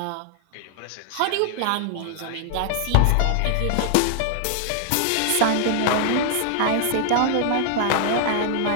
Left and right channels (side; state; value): both; different; correlation 0.00